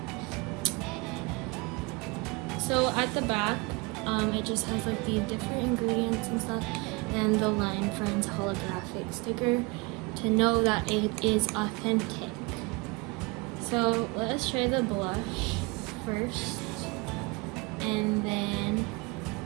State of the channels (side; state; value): left; quieter; 27.0 dB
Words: So at the back, it just has like the different ingredients and stuff, and the Line Friends holographic sticker to know that it is authentic. So let's try the blush first, and then